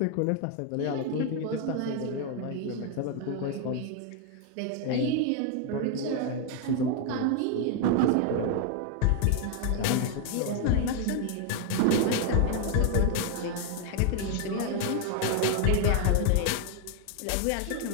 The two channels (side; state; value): both; different; correlation 0.00